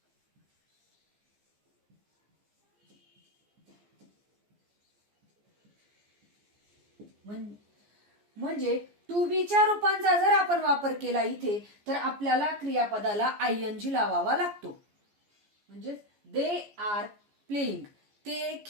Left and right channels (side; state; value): left; late; 14 ms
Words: म्हणजे टू बीच्या रूपांचा जर आपण वापर केला इथे तर आपल्याला क्रियापदाला ING लावावा लागतो. म्हणजे दे आर प्लेइंग, ते